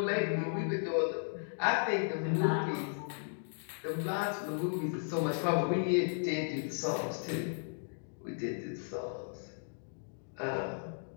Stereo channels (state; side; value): silent; right; digital silence